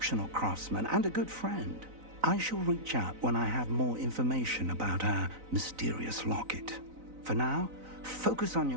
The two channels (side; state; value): left; late; 4.0 ms